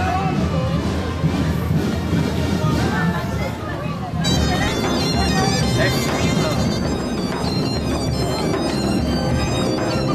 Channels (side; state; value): both; identical; correlation 1.00